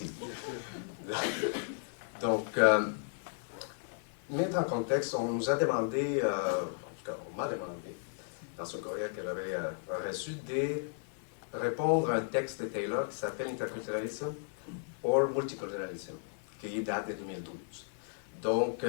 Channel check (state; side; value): silent; right; 55 dB below the other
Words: Donc, mettre en contexte, on nous a demandé, en tout cas, on m'a demandé, dans ce courriel que j'avais reçu, de répondre à un texte de Taylor qui s'appelle Interculturalism or Multiculturalism, qui date de 2012. Donc,